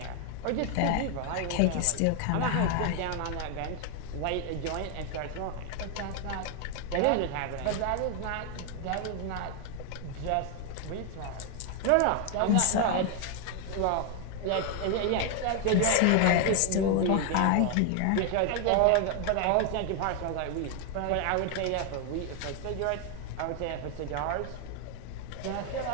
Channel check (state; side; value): different; both; correlation 0.00